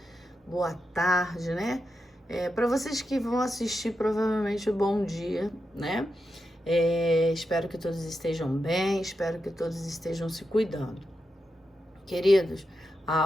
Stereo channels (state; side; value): normal; both; correlation 0.87